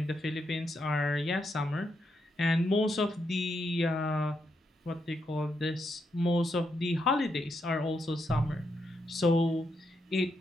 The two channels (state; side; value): normal; both; correlation 0.81